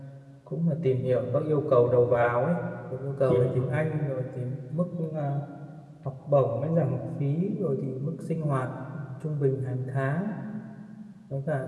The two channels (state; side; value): identical; both; correlation 1.00